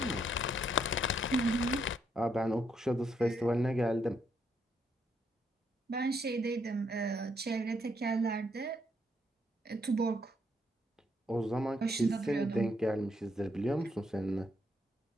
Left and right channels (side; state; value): both; normal; correlation 0.74